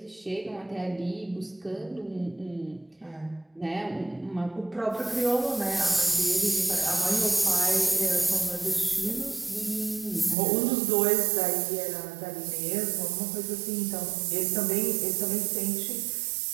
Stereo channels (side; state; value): left; drops out; at 10.4 s